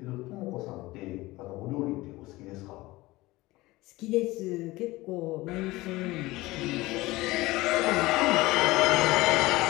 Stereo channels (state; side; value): quieter; right; 19.7 dB